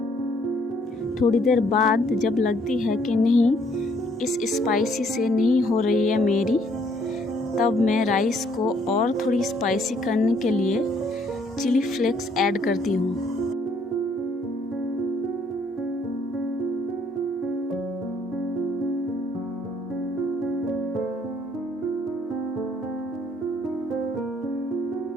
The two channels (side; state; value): both; normal; correlation 0.65